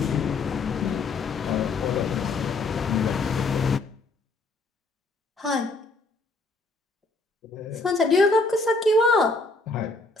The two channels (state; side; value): quieter; right; 3.5 dB